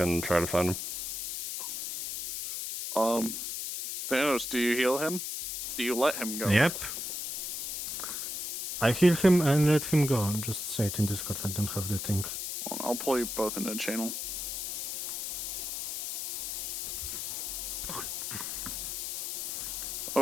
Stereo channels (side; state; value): left; noise; hiss, 4 dB below the sound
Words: try to find him. Thanos, do you heal him? Do you let him go? Yep. I heal him and let him go. Just say it in Discord, I don't have the thing. I'll pull you both into the channel.